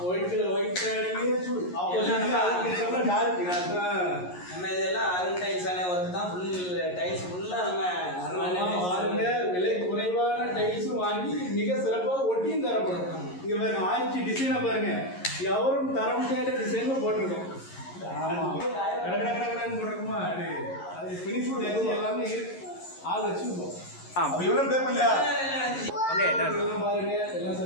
ஒயிட் ஷேடிங்கே நம்ம டார்க். நம்ம இதெல்லாம் அருண் டைல்ஸான ஒர்க் தான். டைல்ஸ் ஃபுல்லாக நம்ம வாருங்க. விலை குறைவான டைல்ஸும் வாங்கி மிக சிறப்பாக ஒட்டியும் தரப்படும். இங்கே பாருங்க, ஆயிடுச்சு டிசைனை பாருங்க, எவரும் தர முடியாத டிசைனும் போட்டிருக்கோம். ஆமாம், கடற்கடன்னு போட்டிருக்குமா? அது ஃபினிஷ் எல்லாமே ஆள் வச்சுருக்கோம். இவ்வளோ பே பண்ணலையா? ஓகே, எல்லாம் பாருங்க, எல்லாம்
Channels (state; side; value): late; right; 11 ms